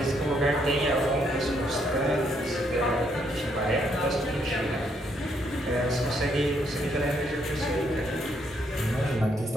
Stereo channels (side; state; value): both; normal; correlation 0.73